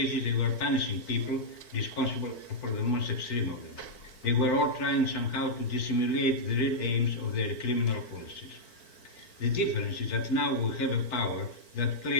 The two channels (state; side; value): late; right; 4.5 ms